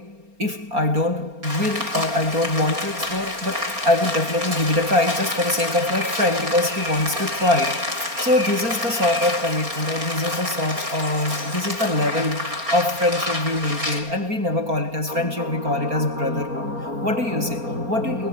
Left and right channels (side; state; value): left; late; 4.3 ms